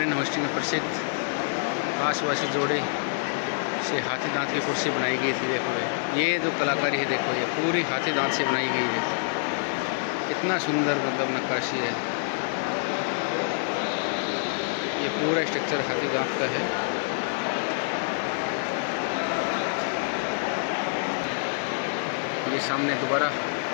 होस्टिंग में प्रसिद्ध आसपासी जोड़े से हाथी दांत की कुर्सी बनाई गई थी। देखो ये जो कलाकारी है, देखो ये पूरी हाथी दांत से बनाई गई है। इतना सुंदर मतलब नक्काशी है। ये पूरा स्ट्रक्चर हाथी दांत का है। ये सामने दोबारा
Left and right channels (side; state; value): right; silent; digital silence